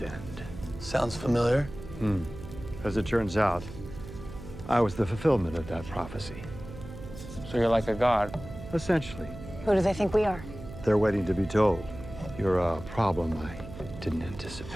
Sounds familiar. As it turns out, I was the fulfillment of that prophecy. So you're like a god? Essentially. who do they think we are? They're waiting to be told. You're a problem I didn't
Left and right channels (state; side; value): noise; right; hum, 13 dB below the sound